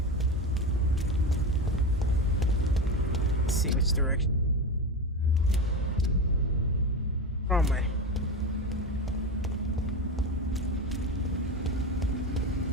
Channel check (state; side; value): normal; both; correlation 0.21